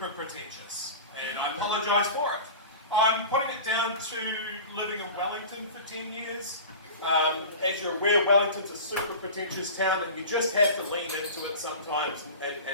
pretentious, and I apologise for it. I'm putting it down to living in Wellington for 10 years. As you're aware, Wellington's a super pretentious town, and you just have to lean into it sometimes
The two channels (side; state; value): both; inverted; correlation -0.34